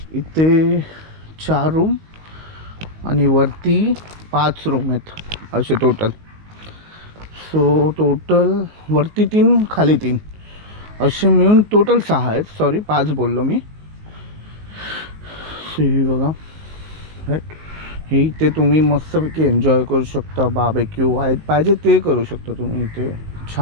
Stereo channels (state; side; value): late; left; 19 ms